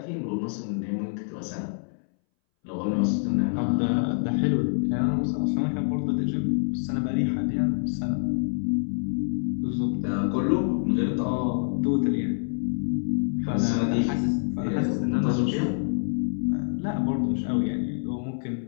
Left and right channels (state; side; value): silent; right; 61 dB below the other